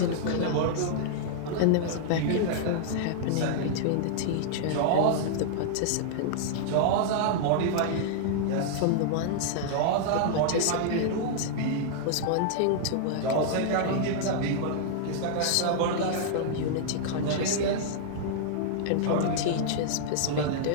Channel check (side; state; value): both; different; correlation -0.01